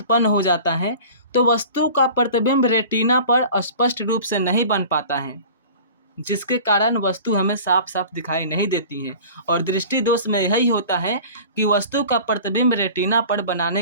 हो जाता है तो वस्तु का प्रतिबिंब रेटिना पर स्पष्ट रूप से नहीं बन पाता है, जिसके कारण वस्तु हमें साफ साफ दिखाई नहीं देती है। और दृष्टि दोष में यही होता है कि वस्तु का प्रतिबिंब रेटिना पर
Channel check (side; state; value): both; inverted; correlation -0.41